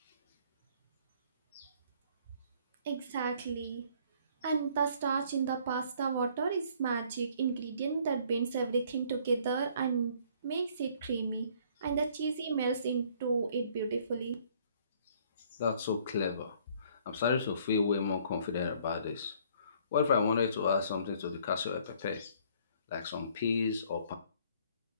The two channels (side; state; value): both; inverted; correlation -0.60